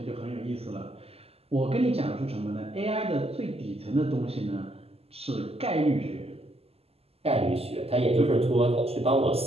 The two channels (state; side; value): late; left; 0.29 ms